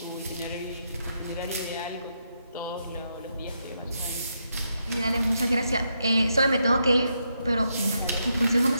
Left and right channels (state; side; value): inverted; both; correlation -0.81